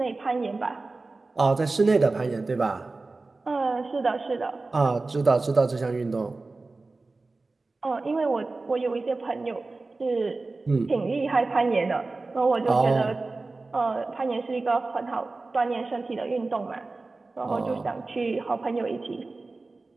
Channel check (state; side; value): quieter; left; 3.5 dB